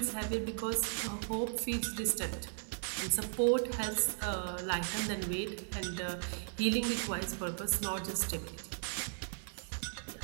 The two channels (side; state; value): left; silent; 53 dB below the other